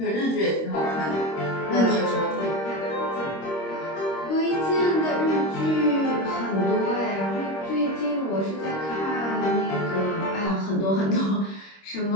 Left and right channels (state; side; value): late; right; 26 ms